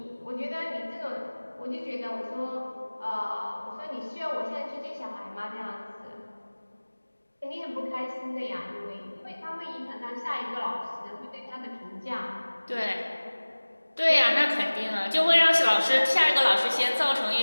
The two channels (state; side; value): inverted; both; correlation -1.00